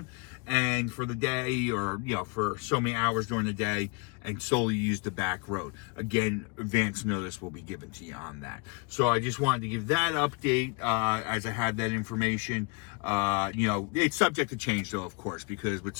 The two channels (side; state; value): right; quieter; 31.3 dB